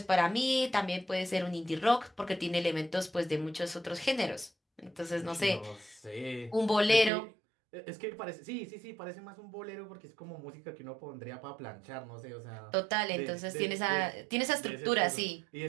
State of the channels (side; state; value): left; drops out; at 7.1 s